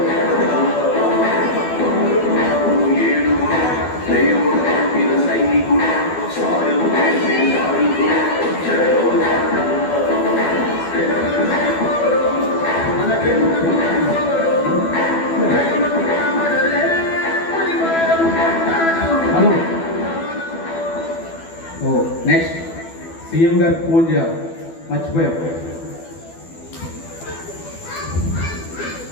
హలో, నెక్స్ట్ సీఎం గారికి ఫోన్ చేయాలి, మర్చిపోయాం.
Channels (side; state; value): right; late; 12 ms